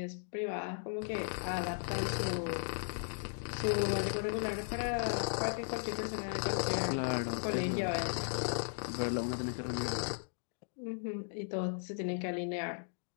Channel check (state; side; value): silent; right; digital silence